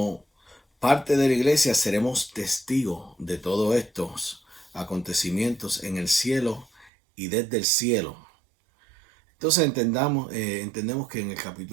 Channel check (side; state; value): left; drops out; at 6.9 s